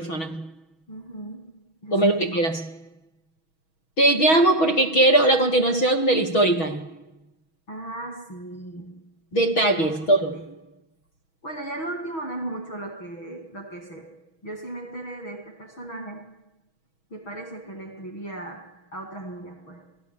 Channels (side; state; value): right; late; 6.2 ms